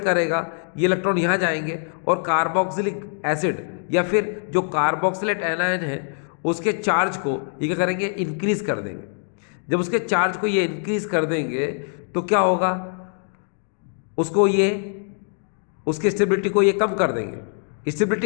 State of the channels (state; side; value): silent; right; 61 dB below the other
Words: ये इलेक्ट्रॉन यहाँ जाएंगे और कार्बोक्सिलिक एसिड या फिर जो कार्बोक्सिलेट एनायन है उसके चार्ज को ये क्या करेंगे, इंक्रीज कर देंगे। जब उसके चार्ज को ये इंक्रीज कर देंगे तो क्या होगा, उसको ये उसकी स्टेबिलिटी को ये कम कर देंगे।